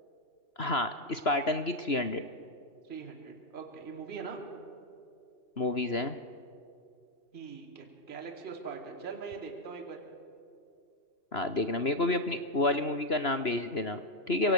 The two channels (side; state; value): right; late; 3.0 ms